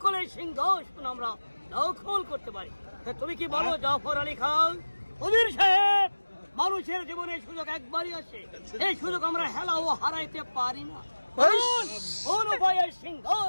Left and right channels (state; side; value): inverted; both; correlation -1.00